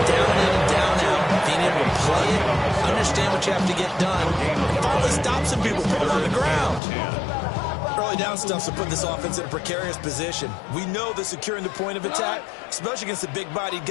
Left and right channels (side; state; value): right; drops out; at 6.8 s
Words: in, down out. Being able to play it, understand what you have to get done, and finally stop some people, put them on the ground. Early down stuff to put this offense in a precarious position. We know that securing the point of attack, especially against the big-bodied